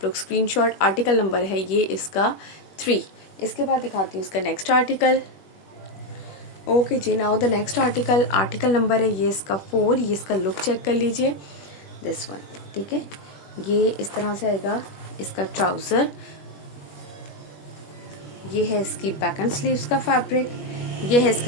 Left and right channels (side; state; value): right; late; 21 ms